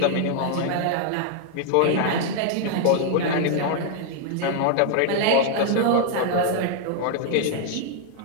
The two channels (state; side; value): different; both; correlation 0.00